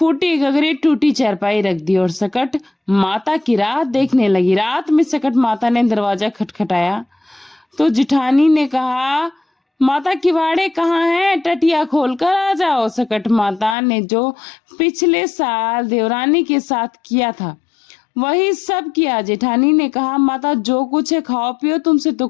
गगरी टूटी चारपाई रख दी और सकट माता की रात देखने लगी। रात में सकट माता ने दरवाजा खटखटाया तो जिठानी ने कहा, माता किवाड़े कहाँ हैं, टटिया खोलकर आ जाओ। सकट माता ने जो पिछले साल देवरानी के साथ किया था वही सब किया। जेठानी ने कहा, माता जो कुछ है खाओ पियो, तुमसे तो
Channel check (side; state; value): right; drops out; at 13.8 s